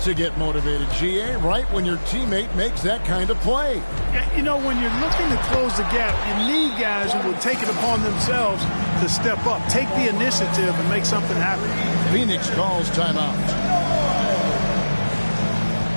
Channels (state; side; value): inverted; both; correlation -1.00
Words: to get motivated, GA, right when your teammate makes that kind of play. Yeah, you know, when you're looking to close the gap, you need guys who will take it upon themselves to step up, take the initiative, and make something happen. Phoenix calls timeout.